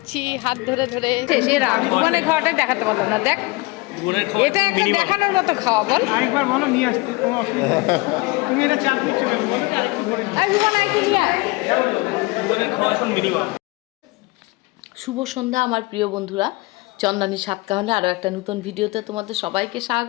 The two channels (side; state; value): right; quieter; 23.9 dB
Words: হাত ধরে ধরে। সেরা ভুবনের খাওয়াটাই দেখাতে পারলাম না। দেখ, এটা একটা দেখানোর মতো খাওয়া। বল আরেকবার বলো, নিয়ে আসতে কোনো অসুবিধা নেই। তুমি এটা চাপ দিচ্ছ কেন বলো? শুভ সন্ধ্যা আমার প্রিয় বন্ধুরা, চন্দনী সাতকাহনে আরও একটা নতুন ভিডিওতে তোমাদের সবাইকে